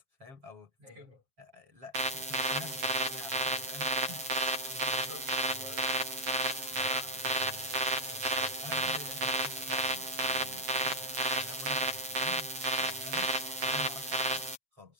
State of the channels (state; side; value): late; left; 7.3 ms